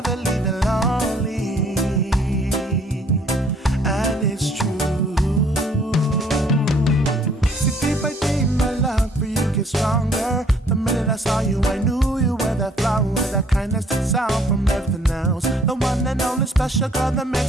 leave you lonely. And it's true. See, day by day my love for you gets stronger. The minute I saw you I knew you were that flower, that kindness that's out from everything else. The one and only special girl that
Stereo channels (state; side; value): normal; both; correlation 0.60